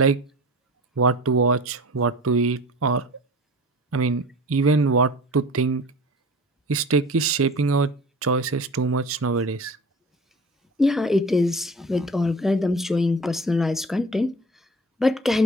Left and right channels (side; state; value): both; normal; correlation 0.39